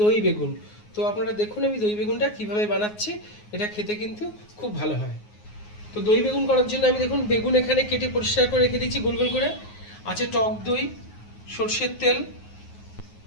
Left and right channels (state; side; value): late; right; 9.5 ms